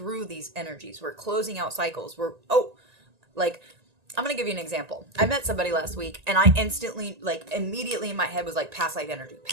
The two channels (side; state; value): left; late; 1.9 ms